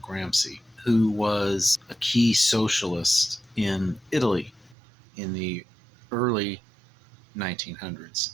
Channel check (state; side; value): drops out; left; at 4.8 s